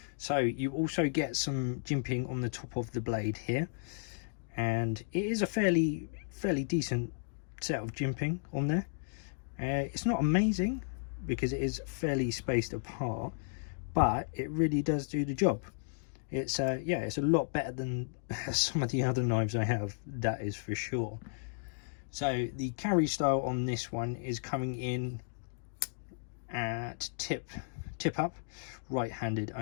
So you also get some jimping on the top of the blade here, and it is a fairly decent set of jimping on there. It's not amazing because it is fairly spaced apart, but it really does do the job. It's yeah, it's a lot better than some of the other knives I have, that is for sure. So the carry style on this one is coming in at tip up, right-handed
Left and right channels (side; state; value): right; silent; digital silence